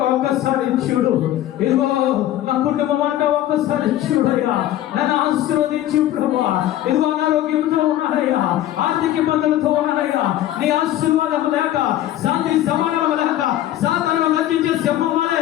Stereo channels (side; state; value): right; quieter; 13.3 dB